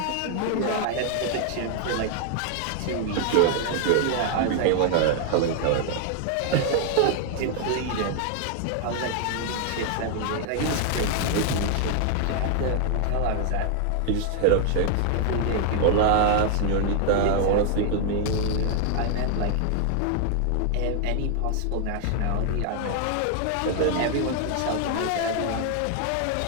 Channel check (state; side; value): different; both; correlation 0.00